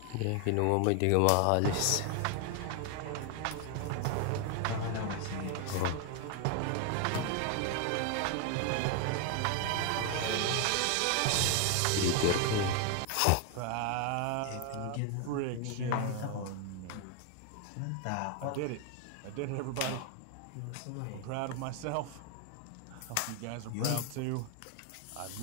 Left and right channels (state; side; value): different; both; correlation 0.01